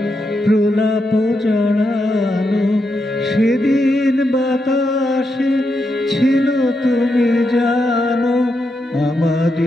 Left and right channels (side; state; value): both; normal; correlation 0.84